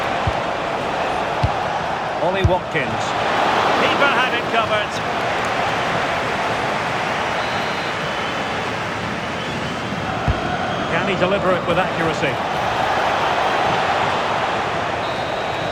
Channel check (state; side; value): identical; both; correlation 1.00